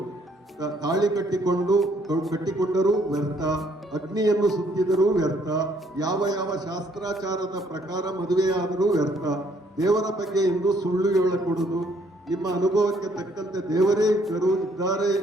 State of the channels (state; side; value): normal; both; correlation 0.66